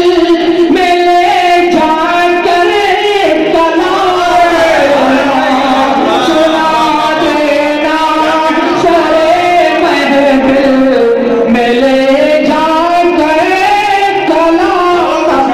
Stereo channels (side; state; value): both; identical; correlation 1.00